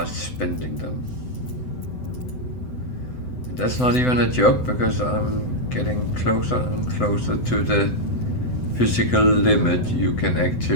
spending them. And that's not even a joke, because I'm getting closer and closer to the physical limit you can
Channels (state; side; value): late; right; 7.9 ms